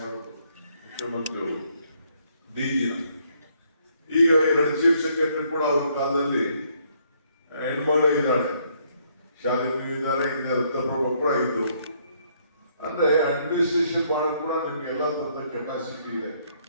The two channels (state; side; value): inverted; both; correlation -0.69